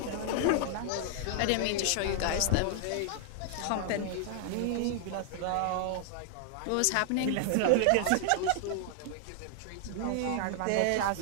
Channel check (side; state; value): both; different; correlation 0.00